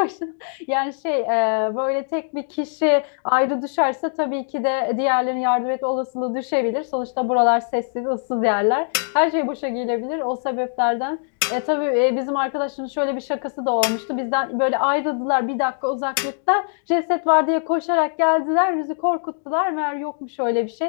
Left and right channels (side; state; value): right; silent; digital silence